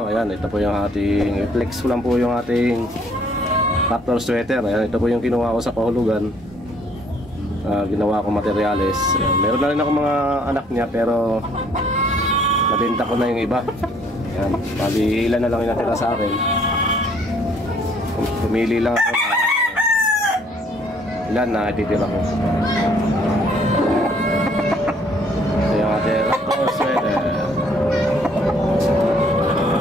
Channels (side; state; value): both; normal; correlation 0.62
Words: ayan, ito po yung ating i-flex ko lang po yung ating tractor sweater. Ayan, ito po yung kinuha ko sa kahulugan. Ginawa ko materyales. Ayan, meron na rin ako mga anak niya pero nabenta ko na yung iba. Ayan, bali ilan na lang yung natira sa akin. Pumili lang ako ilan na ititira ko. Ito yung ating tractor sweater.